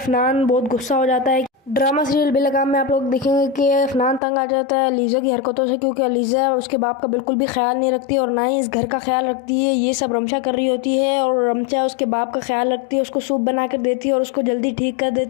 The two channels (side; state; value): right; drops out; at 4.2 s